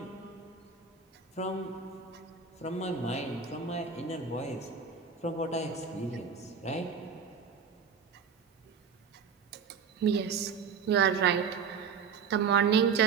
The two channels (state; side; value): quieter; left; 6.2 dB